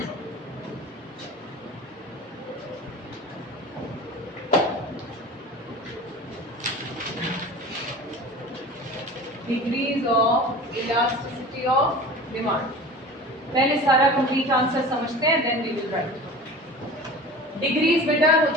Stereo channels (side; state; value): both; normal; correlation 0.37